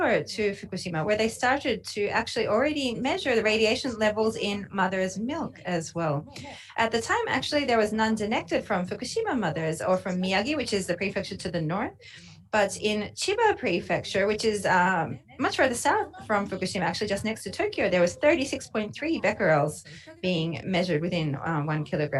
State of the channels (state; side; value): identical; both; correlation 1.00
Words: to Fukushima, where they started to actually already measure the radiation levels in mother's milk as well. At the time, actually, there was none detected from Fukushima mothers or from Miyagi, which is the prefecture to the north. But in Chiba Prefecture, which is much further south from Fukushima, actually just next to Tokyo, there was 36.3 becquerels being measured within 1